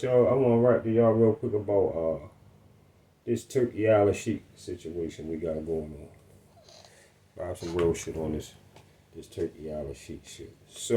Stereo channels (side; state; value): both; identical; correlation 1.00